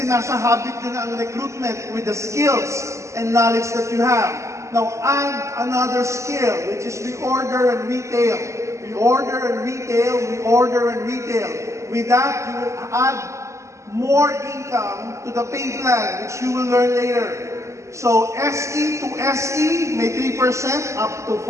nasa habit yun na ang recruitment with the skills and knowledge that you have. Now add another skill, which is reorder and retail. Reorder and retail, reorder and retail. With that, you will add more income to the pay plan, which you will learn later. So SE to SE, may 3% up to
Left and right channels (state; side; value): late; left; 0.14 ms